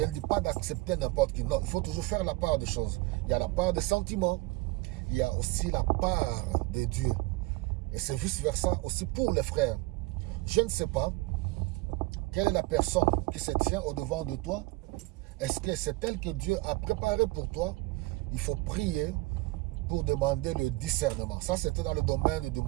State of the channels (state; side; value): quieter; left; 21.0 dB